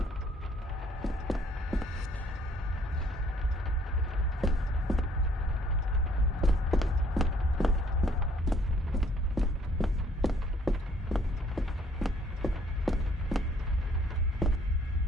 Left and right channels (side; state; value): both; normal; correlation 0.62